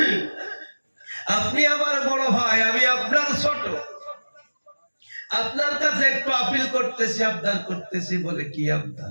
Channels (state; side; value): inverted; both; correlation -1.00